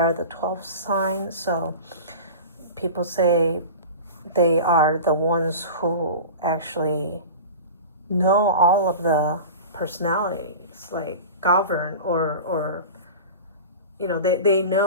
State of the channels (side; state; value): both; inverted; correlation -0.33